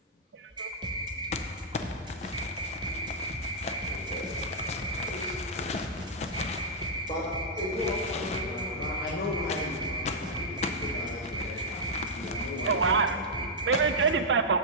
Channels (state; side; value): normal; both; correlation -0.05